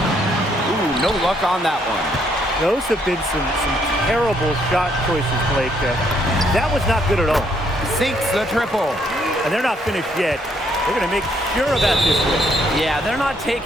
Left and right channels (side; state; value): both; normal; correlation 0.70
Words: no luck on that one. Those have been some terrible shot choices, Blake. That was not good at all. Sinks the triple. And they're not finished yet. They're going to make sure about this win. Yeah, they're not